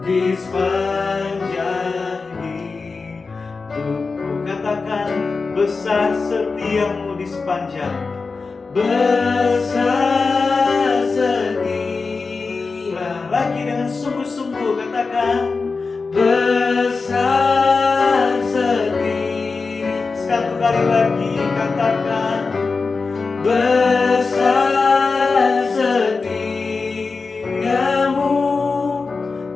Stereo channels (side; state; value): right; quieter; 4.3 dB